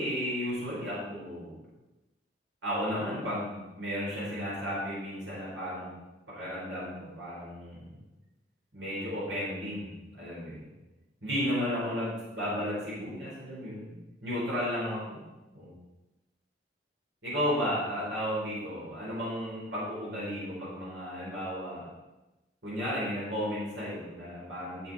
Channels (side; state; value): both; normal; correlation 0.37